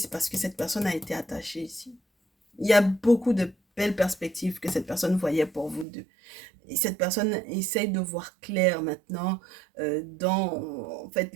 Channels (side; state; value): left; drops out; at 5.9 s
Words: parce que cette personne a été attachée ici. Il y a beaucoup de belles perspectives que cette personne voyait pour vous deux. Et cette personne essaye de voir clair maintenant dans en fait